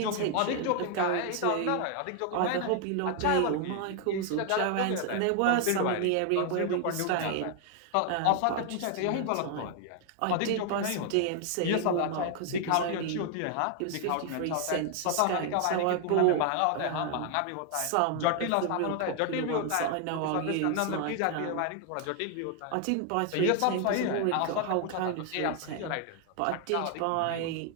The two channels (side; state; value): both; different; correlation 0.00